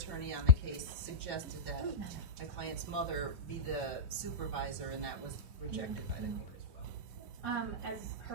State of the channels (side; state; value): left; late; 3.2 ms